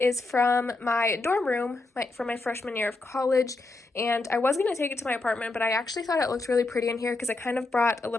from my dorm room from my freshman year of college, and I was going to take it to my apartment, but I actually thought it looked really pretty in here because it kind of brought a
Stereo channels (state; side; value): quieter; right; 3.2 dB